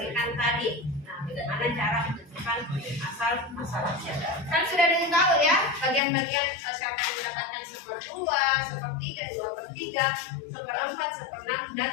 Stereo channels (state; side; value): drops out; right; at 6.0 s